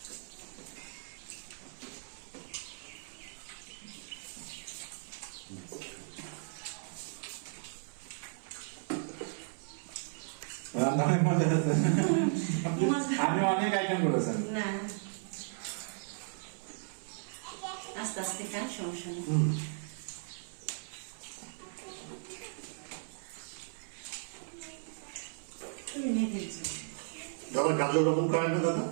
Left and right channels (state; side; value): silent; left; 54 dB below the other